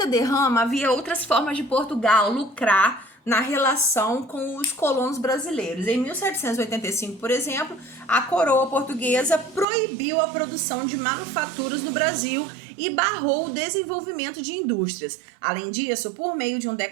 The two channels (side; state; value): left; drops out; at 9.7 s